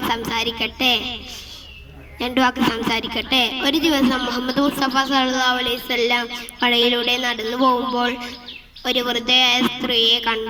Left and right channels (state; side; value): identical; both; correlation 1.00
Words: സംസാരിക്കട്ടെ. ഒരു ദിവസം മുഹമ്മദ് മുസ്തഫ സല്ലല്ലാഹു അലൈഹി വസല്ലം കടയിലൂടെ നടന്നു പോകുമ്പോൾ ഒരു വൃദ്ധയായ സ്ത്രീയെ